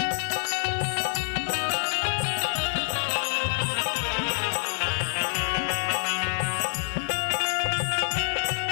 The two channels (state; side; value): silent; right; digital silence